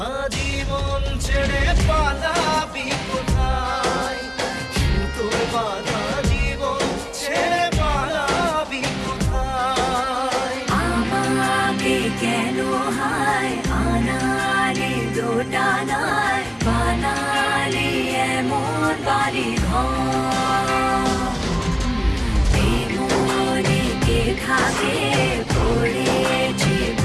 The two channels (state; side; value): identical; both; correlation 1.00